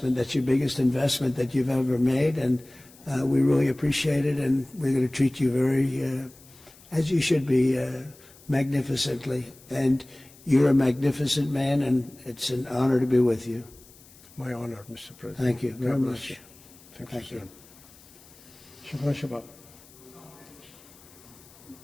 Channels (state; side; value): noise; left; hiss, 24 dB below the sound